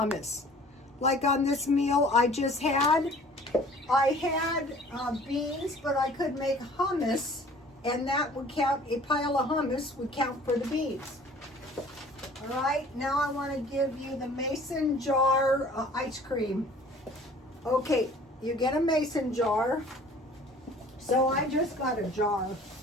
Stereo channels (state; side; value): normal; both; correlation 0.50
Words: Like on this meal I just had, I had beans, but I could make hummus, and that would count, a pile of hummus would count for the beans. All right, now I want to give you the mason jar ice cream. Okay, you get a mason jar. So I just got a jar.